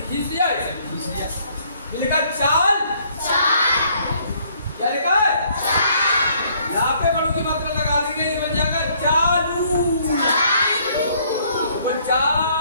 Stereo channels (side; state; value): both; inverted; correlation -0.64